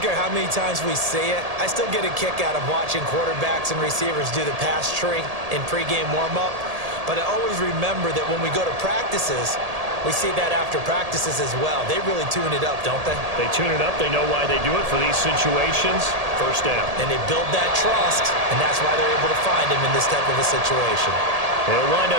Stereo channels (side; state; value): left; late; 1.8 ms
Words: how many times we say it. I still get a kick out of watching quarterbacks and receivers do the pass tree in pregame warm-up. But I always remember that when we go to practices, we see that after practices as well. They really tune it up, don't they? They tune it up. They know why they do it for these situations. 1st down. And they build that trust, and that's why they're able to find him in this type of a situation. They'll wind